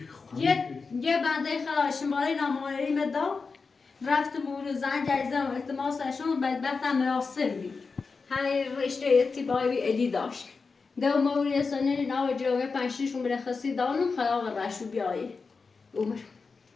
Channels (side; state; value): right; quieter; 4.6 dB